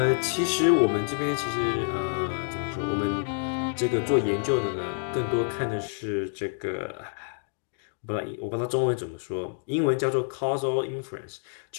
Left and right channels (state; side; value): silent; right; digital silence